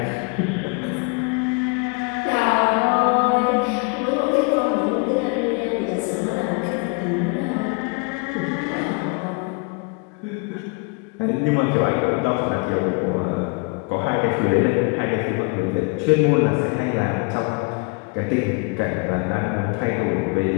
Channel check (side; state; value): right; quieter; 31.4 dB